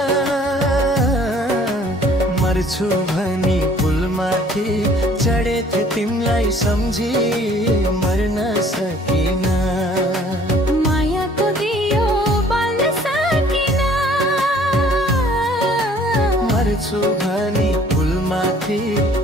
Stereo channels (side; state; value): both; normal; correlation 0.56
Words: मर्छु भनी पुलमाथि चढेथे तिमीलाई सम्झी मर्न सकिन मायाको दियो बाल्न सकिन मर्छु भनी पुलमाथि